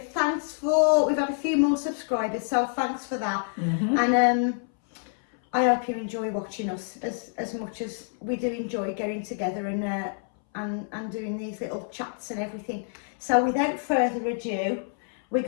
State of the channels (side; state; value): right; silent; 60 dB below the other